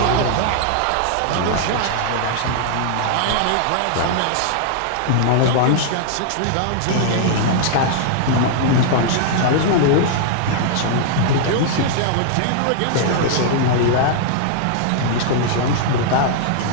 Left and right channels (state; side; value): different; both; correlation -0.01